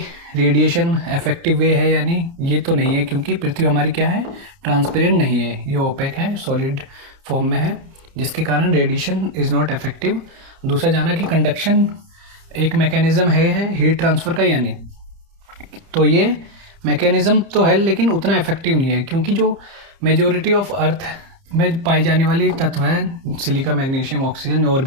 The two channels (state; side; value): late; left; 30 ms